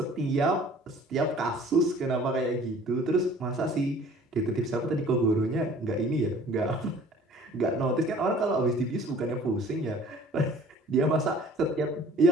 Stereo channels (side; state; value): both; normal; correlation 0.51